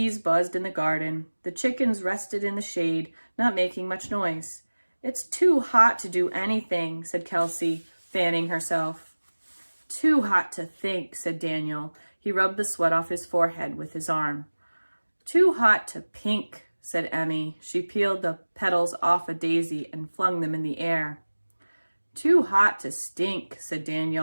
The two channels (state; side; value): inverted; both; correlation -1.00